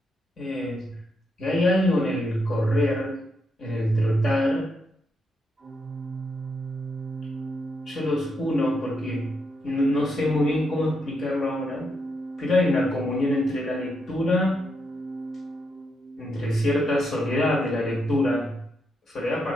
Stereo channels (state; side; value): normal; both; correlation 0.81